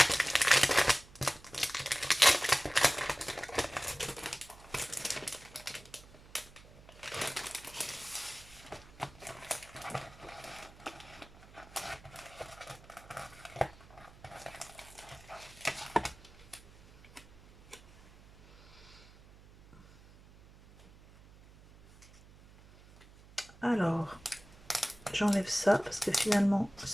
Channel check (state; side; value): noise; right; hum, 22 dB below the sound